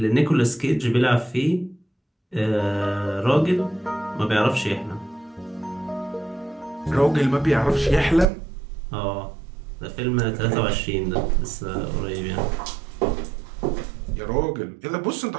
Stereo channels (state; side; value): drops out; left; at 8.2 s